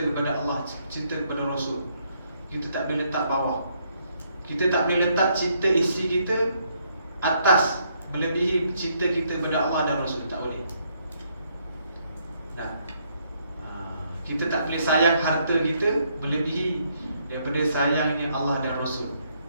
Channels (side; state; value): both; inverted; correlation -0.72